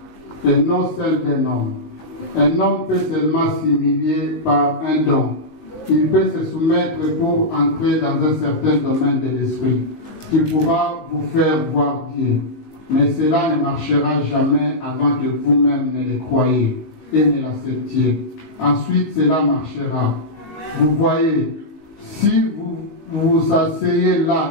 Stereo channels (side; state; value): right; late; 19 ms